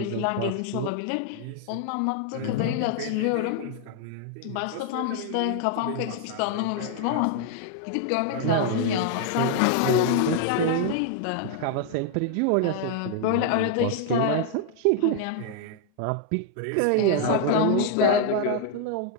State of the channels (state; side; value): different; both; correlation 0.00